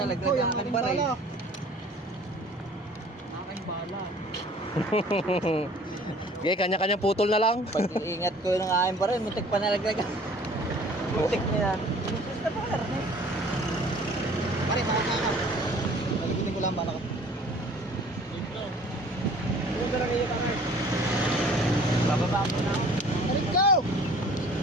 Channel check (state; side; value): normal; both; correlation 0.51